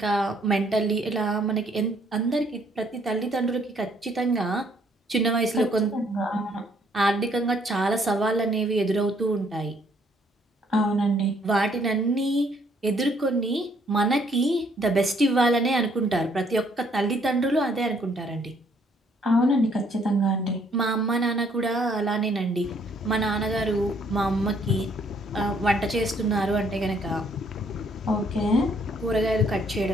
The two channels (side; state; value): both; normal; correlation 0.66